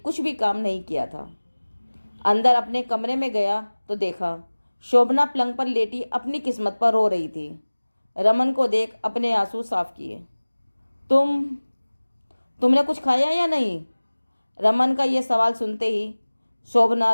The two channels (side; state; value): both; inverted; correlation -1.00